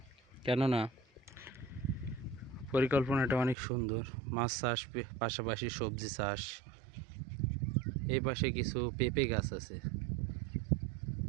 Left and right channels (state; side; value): drops out; left; at 3.6 s